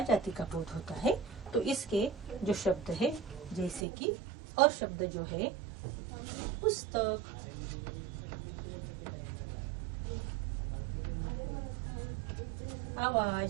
जाति का बोध होता है। तो इसके जो शब्द है, जैसे कि और शब्द जो है पुस्तक,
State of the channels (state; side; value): drops out; left; at 3.9 s